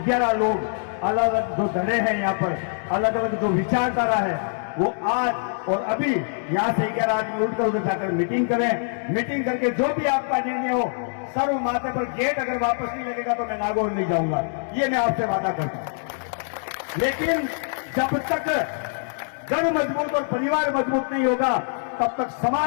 लोग अलग अलग जो धड़े हैं यहाँ पर, अलग अलग जो विचारधारा है, वो आज और अभी यहाँ से 11 आदमी उठकर उधर जाकर मीटिंग करें। मीटिंग करके जो भी आपका निर्णय हो, सर्व माथे पर गेट अगर वापस नहीं लगेगा तो मैं नागौर नहीं जाऊंगा, ये मैं आपसे वादा करता हूं। लेकिन जब तक घर मजबूत और परिवार मजबूत नहीं होगा तब तक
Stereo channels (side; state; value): right; silent; digital silence